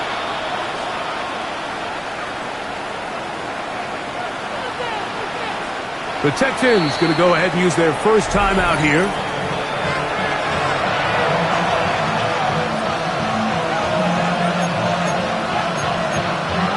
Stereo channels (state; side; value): identical; both; correlation 1.00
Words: The Texans going to go ahead and use their first timeout here.